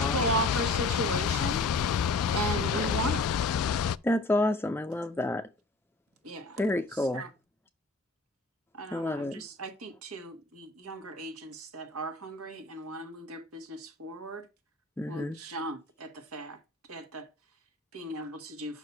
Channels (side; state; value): right; quieter; 3.1 dB